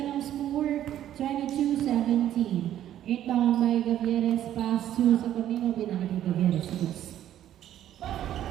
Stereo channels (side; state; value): left; quieter; 11.7 dB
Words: ang score. 22-17. Inbound by Gavieres, pass to Saturnino, binalik ni Gavieres.